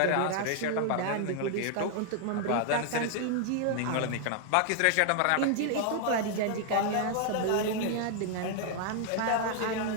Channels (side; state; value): both; different; correlation 0.00